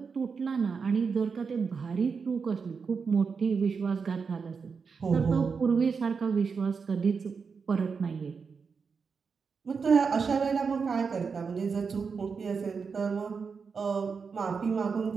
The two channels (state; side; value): quieter; left; 5.5 dB